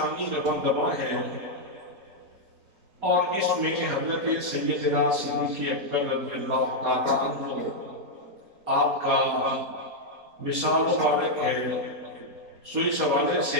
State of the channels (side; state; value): left; late; 4.2 ms